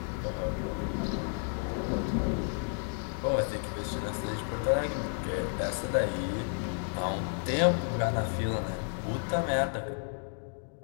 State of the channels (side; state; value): right; silent; 57 dB below the other